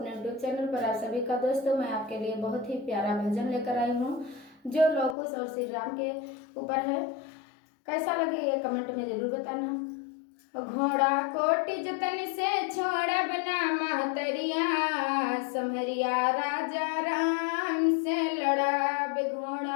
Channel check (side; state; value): right; drops out; at 5.2 s